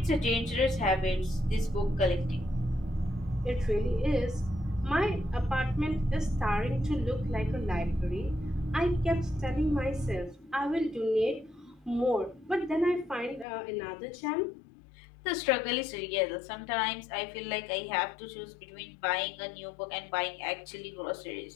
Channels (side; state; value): right; drops out; at 13.5 s